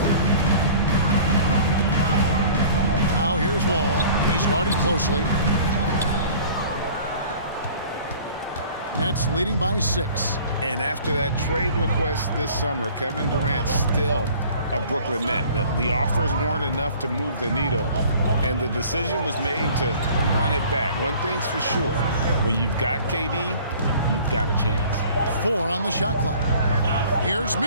Now here's Wall. He's guarded closely. Nets leading by 6. And after that trade request this summer, Kevin Durant still a Brooklyn Net. The offers weren't enough to move the needle, and the decision was made to run it back. One thing's for sure, when you've got KD, you've got a chance. 4 on the shot clock. Here's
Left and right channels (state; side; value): inverted; both; correlation -0.48